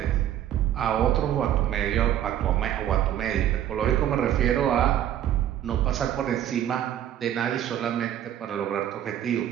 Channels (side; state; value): left; quieter; 11.2 dB